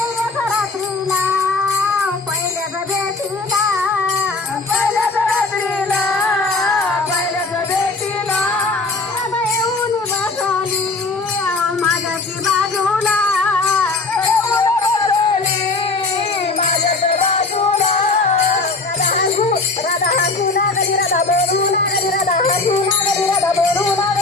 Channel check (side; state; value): right; quieter; 3.7 dB